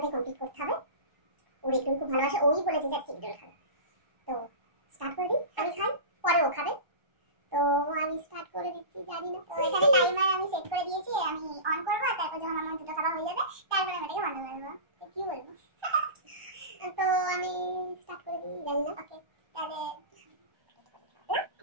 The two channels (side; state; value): left; late; 1.2 ms